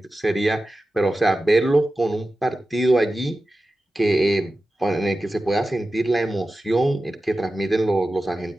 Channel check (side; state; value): both; normal; correlation 0.94